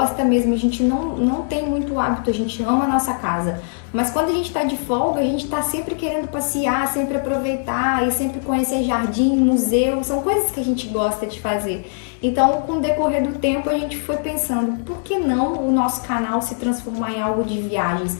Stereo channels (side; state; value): right; silent; digital silence